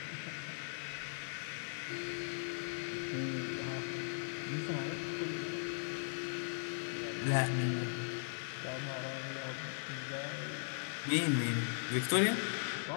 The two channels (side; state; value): right; silent; digital silence